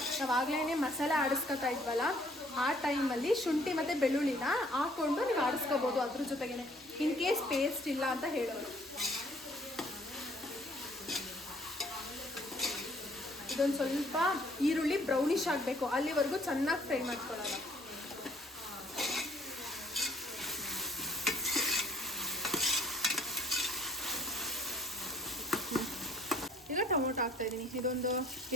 ನಾವಾಗಲೇ ಮಸಾಲೆ ಆಡಿಸ್ಕೊತಾ ಇದ್ವಲ್ಲ, ಆ ಟೈಮಲ್ಲಿ ಶುಂಠಿ ಮತ್ತು ಬೆಳ್ಳುಳ್ಳಿನ ಹಾಕ್ಕೊಂಡು ನೀವು ಆಡಿಸ್ಕೋಬೋದು ಅದ್ರ ಜೊತೆಗೇ. ಇನ್ ಕೇಸ್ ಪೇಸ್ಟ್ ಇಲ್ಲ ಅಂತ ಹೇಳೋರು. ಇದೊಂದು ಸ್ವಲ್ಪ ಈರುಳ್ಳಿ ಬ್ರೌನಿಶ್ ಆಗಬೇಕು, ಅಲ್ಲಿವರೆಗೂ ಚೆನ್ನಾಗಿ ಫ್ರೈ ಮಾಡ್ಕೊಳ್ಳೋಣ. ಈಗ ಟೊಮೊಟೊ ಹಾಕ್ತಾ ಇದ್ದೀನಿ. ಇದೊಂದು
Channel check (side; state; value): both; normal; correlation 0.59